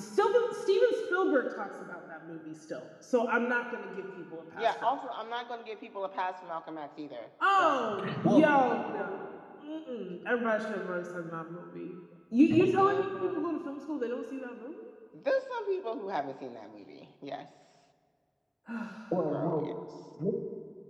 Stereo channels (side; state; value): both; identical; correlation 1.00